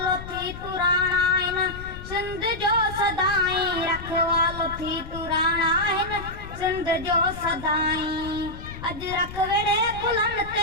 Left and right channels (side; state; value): left; noise; rumble, 12 dB below the sound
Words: थी पुराणा इन सिंध जो सदाई रखवालो थी पुराणा इन सिंध जो सदाई अज रख वेड़े कुलन